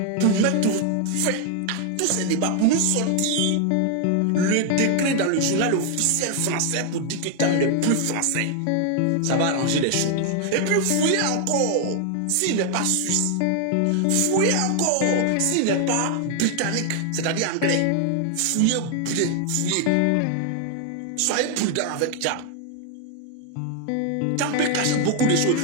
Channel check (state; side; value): different; both; correlation 0.00